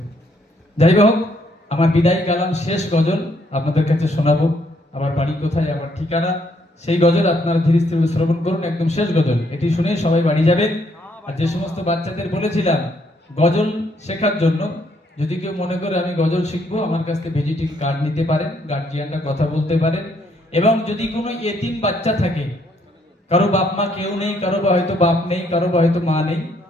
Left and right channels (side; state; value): both; normal; correlation 0.70